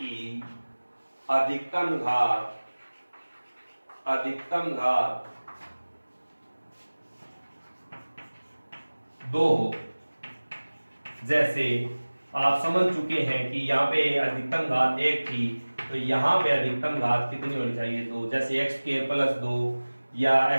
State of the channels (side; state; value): both; inverted; correlation -1.00